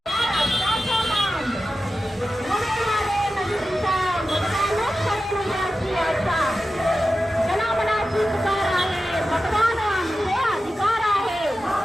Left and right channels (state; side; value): normal; both; correlation 0.93